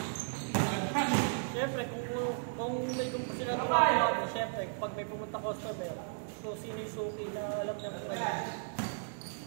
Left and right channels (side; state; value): left; silent; digital silence